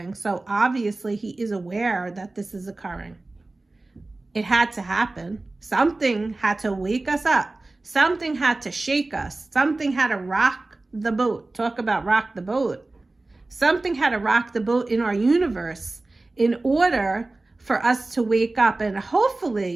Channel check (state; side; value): quieter; left; 3.1 dB